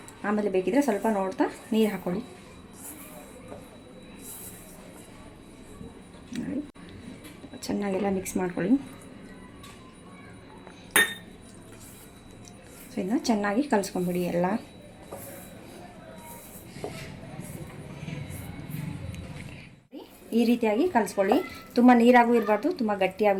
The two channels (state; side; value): identical; both; correlation 1.00